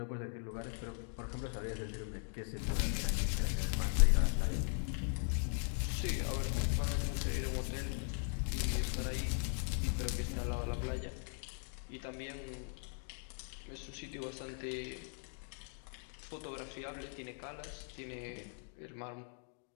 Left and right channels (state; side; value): silent; right; 52 dB below the other